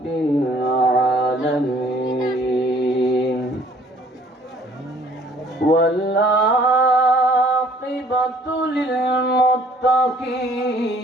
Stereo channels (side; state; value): both; normal; correlation 0.58